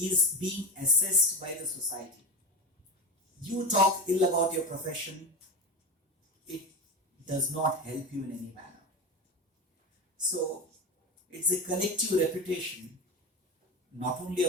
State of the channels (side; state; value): both; normal; correlation 0.22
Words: being assessed by the society. You talk ill about your profession, it does not help you in any manner. So it's a collective reputation, not only